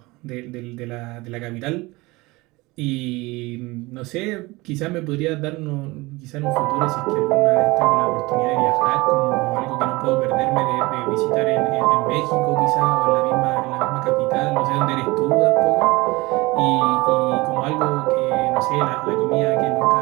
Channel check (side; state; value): left; quieter; 22.4 dB